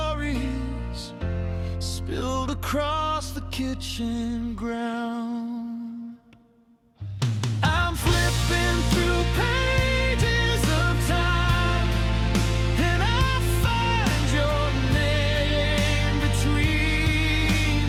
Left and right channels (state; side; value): identical; both; correlation 1.00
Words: spilled across the kitchen ground. I'm flipping through pages of time, and I find your name between